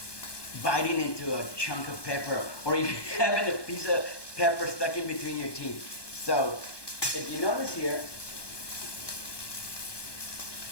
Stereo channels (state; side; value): late; right; 1.2 ms